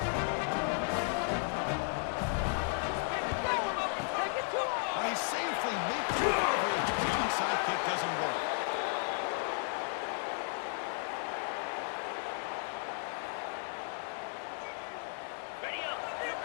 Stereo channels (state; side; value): silent; right; 55 dB below the other